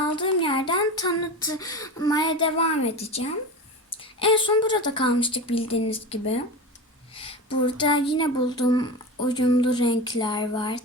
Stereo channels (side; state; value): both; normal; correlation 0.26